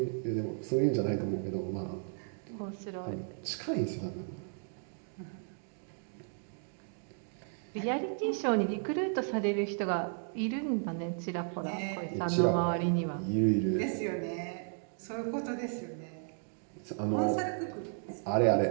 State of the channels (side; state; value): left; silent; 55 dB below the other